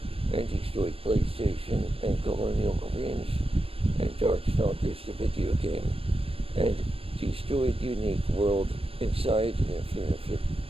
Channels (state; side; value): late; left; 0.28 ms